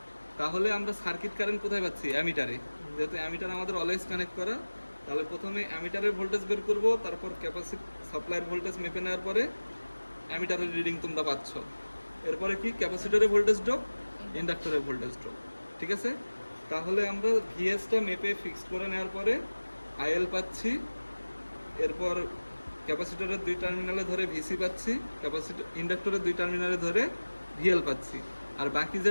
তাহলে আমরা সার্কিট কারেন্ট কোথায় পাচ্ছি? অ্যামিটারে। যেহেতু অ্যামিটার আমাদের অলওয়েজ কানেক্ট করা, তাহলে প্রথমে অ্যামিটারের ভোল্টেজ বের করব, তারপর সাপ্লাইয়ের ভোল্টেজ মেপে নেওয়ার পরে অ্যামিটারের রিডিং তোমরা পাচ্ছ। এরপরে কি? ক্যাপাসিটরের ভোল্টেজ ড্রপ, ইন্ডাক্টরের ভোল্টেজ ড্রপ, ঠিক আছে? তাহলে আমরা ভিএসটা মেপে ফিক্সড করে নেওয়ার পরে আইএল পাচ্ছি, এরপর ক্যাপাসিটরের দুই টার্মিনালে ধরে ভিসি পাচ্ছি, ইন্ডাক্টরের দুই টার্মিনালে ধরে ভিএল পাচ্ছি। আর বাকি যে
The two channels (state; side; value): inverted; both; correlation -1.00